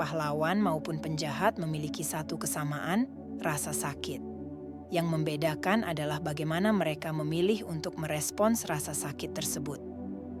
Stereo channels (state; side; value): identical; both; correlation 1.00